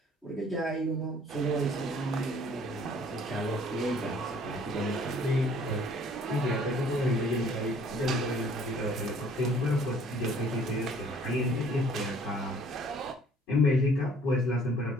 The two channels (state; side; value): normal; both; correlation 0.57